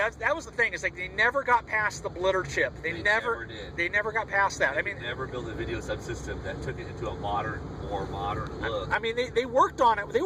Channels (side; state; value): both; identical; correlation 1.00